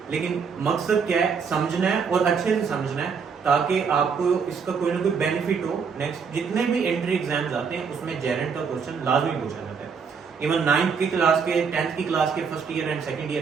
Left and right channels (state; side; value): quieter; left; 5.9 dB